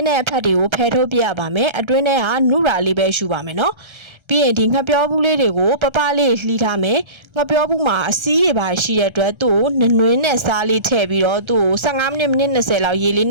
းတဲ့အဖက်တွေကိုဖယ်ထုတ်ပြရပါမယ်အတွင်းထဲကနုရာလေးပဲရှူပါမယ်နော်ပြီးရင်ဒီငှက်ပြောဘူးလေးတွေကိုပပလေးလှီးထားမယ်ငှက်ပြောဘူးမှာအစည်းတွေပါရှိတဲ့အတွက်သူ့ကိုနွင်းနဲ့စားလေးထည့်ပြီးတော့သူ့ကို15မိနစ်20လောက်ရေလေး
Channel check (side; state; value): left; late; 1.3 ms